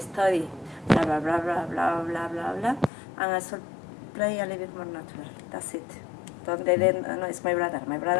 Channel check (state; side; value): drops out; right; at 2.9 s